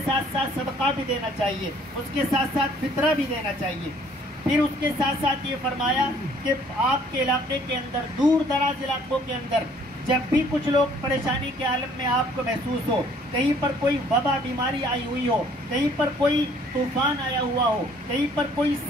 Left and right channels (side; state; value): both; normal; correlation 0.59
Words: ساتھ ساتھ صدقہ بھی دینا چاہیے، اس کے ساتھ ساتھ فطرہ بھی دینا چاہیے۔ پھر اس کے ساتھ ساتھ یہ فرمایا کہ آپ کے علاقے کے اندر، دور دراز علاقوں کے اندر جب بھی کچھ لوگ پریشانی کے عالم میں آپ کو محسوس ہو، کہیں پر کوئی وبا بیماری آئی ہوئی ہو، کہیں پر کوئی طوفان آیا ہوا ہو، کہیں پر کوئی